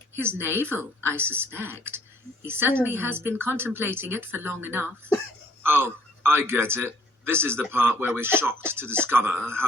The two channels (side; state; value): both; normal; correlation 0.62